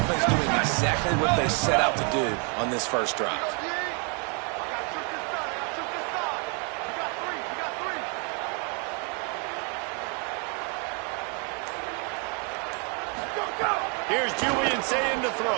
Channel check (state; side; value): quieter; left; 36.9 dB